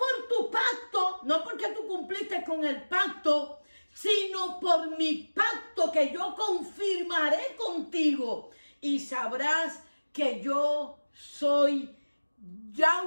tu pacto, no porque tú cumpliste con el pacto, sino por mi pacto que yo confirmaré contigo. Y sabrás que yo soy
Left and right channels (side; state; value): both; inverted; correlation -1.00